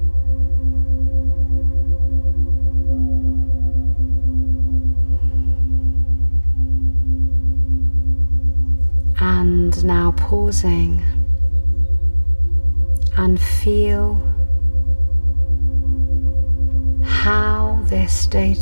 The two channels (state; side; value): inverted; both; correlation -1.00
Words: And now pausing and feel how this